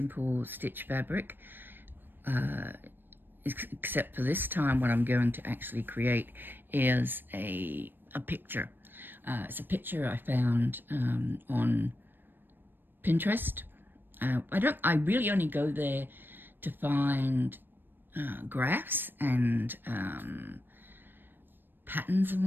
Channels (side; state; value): left; late; 0.095 ms